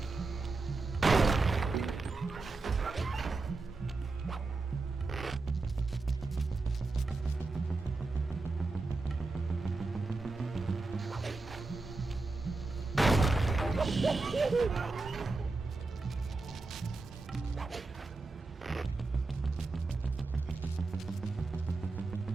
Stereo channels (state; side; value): quieter; left; 3.6 dB